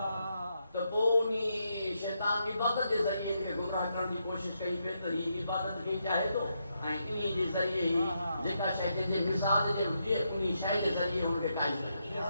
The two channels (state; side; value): inverted; both; correlation -0.81